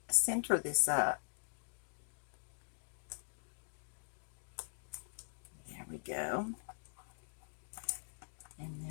center this up. There we go. And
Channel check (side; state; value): right; silent; digital silence